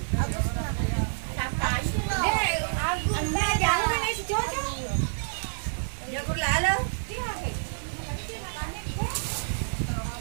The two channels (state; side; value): silent; left; digital silence